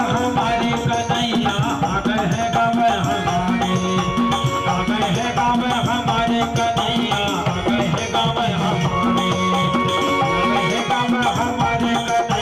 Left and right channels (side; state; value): both; identical; correlation 1.00